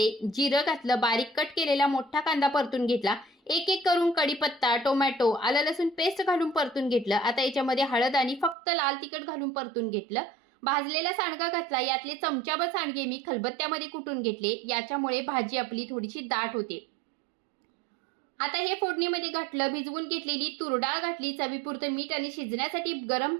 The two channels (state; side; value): drops out; left; at 8.6 s